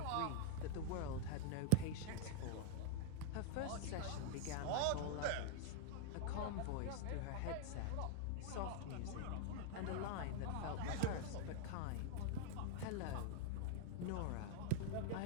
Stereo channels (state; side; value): different; both; correlation -0.01